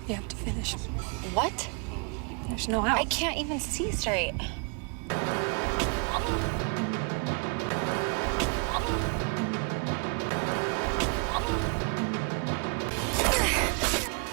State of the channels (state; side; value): quieter; left; 37.3 dB